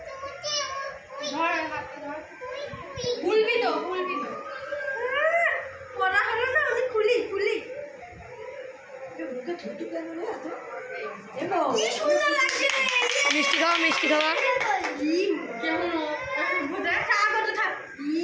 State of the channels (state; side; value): identical; both; correlation 1.00